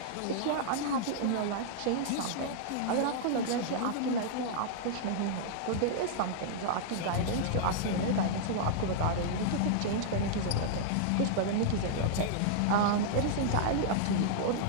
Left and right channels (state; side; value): different; both; correlation -0.01